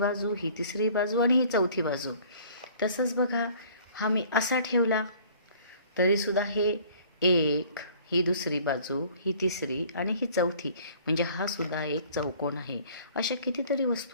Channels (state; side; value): inverted; both; correlation -0.53